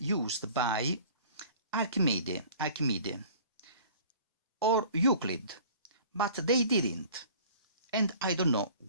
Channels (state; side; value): inverted; both; correlation -0.47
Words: used by Archimedes or Euclid, but they didn't, and I don't know